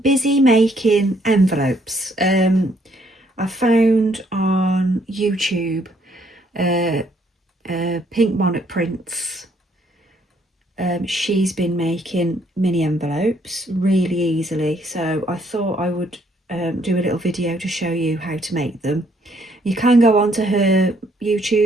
making envelopes. I found on YouTube Pink Monarch Prints. She's been making mini envelopes really easily, so I thought I would do a little video to show you how to make them. You can go onto her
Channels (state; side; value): normal; both; correlation 0.68